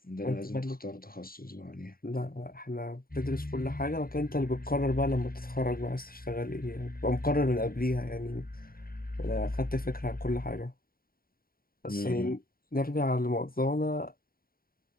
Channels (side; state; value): right; late; 0.43 ms